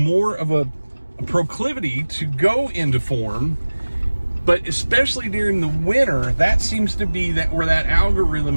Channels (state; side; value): inverted; both; correlation -1.00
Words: of a proclivity to go into form, but especially during the winter, that seems to be where that algorithm